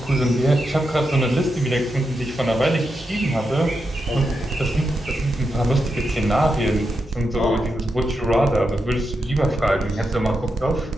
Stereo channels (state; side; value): normal; both; correlation 0.86